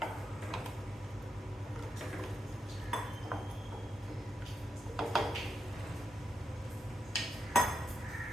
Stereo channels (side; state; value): both; normal; correlation 0.84